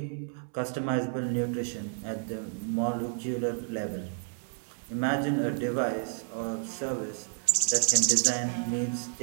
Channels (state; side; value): silent; left; digital silence